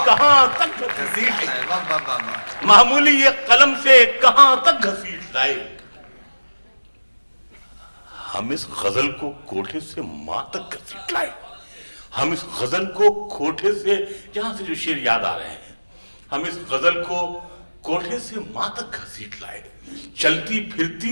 کہاں تک گھسیٹ لائے، معمولی ایک قلم سے کہاں تک گھسیٹ لائے، ہم اس غزل کو کوٹھے سے ماں تک گھسیٹ لائے، ہم اس غزل کو کوٹھے سے، جہاں سے جو شعر یاد آ رہے ہیں، ہم اس غزل کو کوٹھے سے ماں تک گھسیٹ لائے، چلتی پھرتی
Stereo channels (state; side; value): inverted; both; correlation -1.00